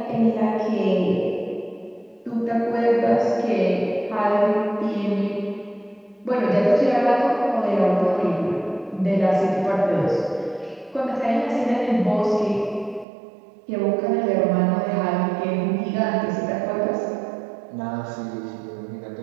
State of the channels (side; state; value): left; drops out; at 13.1 s